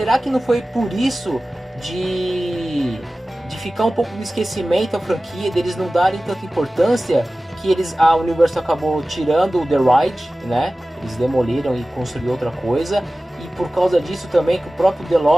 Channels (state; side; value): normal; both; correlation 0.96